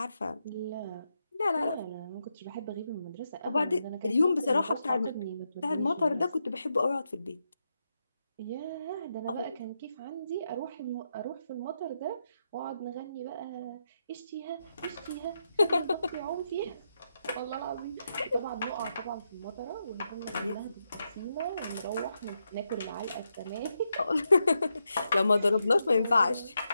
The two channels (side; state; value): both; inverted; correlation -0.84